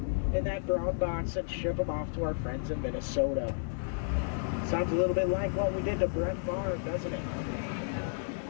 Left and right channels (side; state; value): right; silent; digital silence